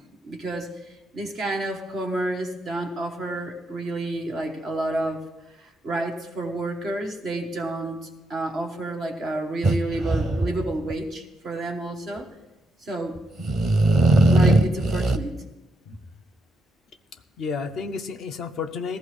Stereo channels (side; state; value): both; normal; correlation 0.80